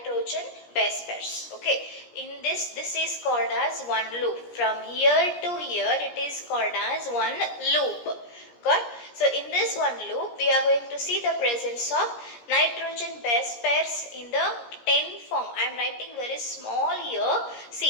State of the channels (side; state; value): right; late; 17 ms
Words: base pairs. Okay, in this is called as one loop. From here to here it is called as one loop. Got, so in this one loop we are going to see the presence of nitrogen base pairs in the 10 form. I am writing very small here.